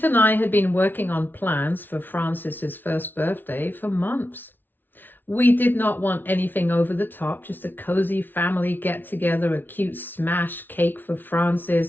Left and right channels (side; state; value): right; late; 0.093 ms